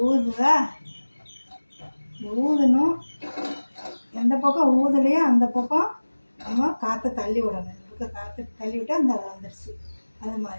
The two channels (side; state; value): both; inverted; correlation -1.00